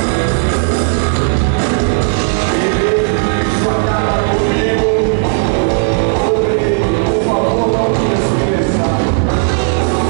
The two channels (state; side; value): silent; left; digital silence